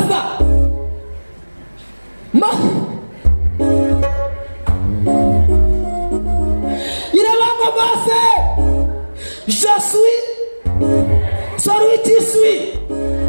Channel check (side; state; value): both; inverted; correlation -1.00